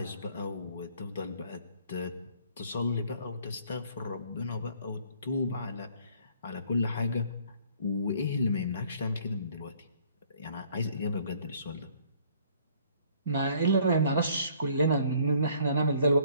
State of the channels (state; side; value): inverted; both; correlation -0.59